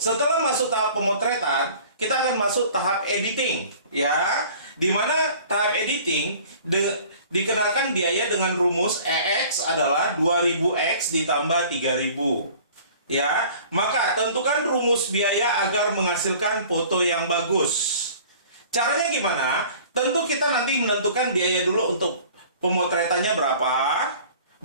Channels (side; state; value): both; inverted; correlation -0.48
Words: masuk tahap pemotretan, kita akan masuk tahap editing. Ya, di mana tahap editing dikenakan biaya dengan rumus EX adalah 2000X ditambah 3000. Ya, maka tentukan rumus biaya agar menghasilkan foto yang bagus. Caranya gimana? Tentu kita nanti menentukan biaya dulu untuk pemotretannya berapa,